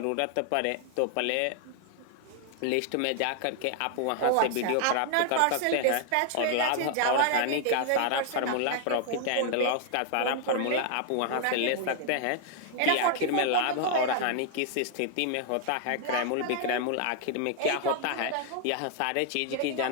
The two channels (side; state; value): both; different; correlation 0.00